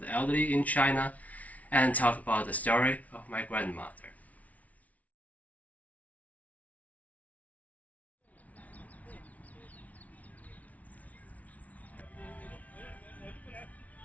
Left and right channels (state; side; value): late; right; 0.070 ms